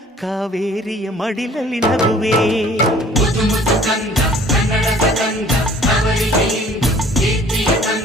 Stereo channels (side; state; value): both; normal; correlation 0.53